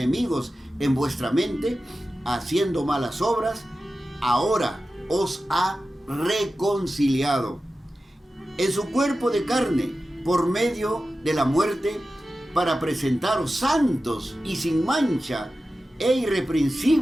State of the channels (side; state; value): both; normal; correlation 0.94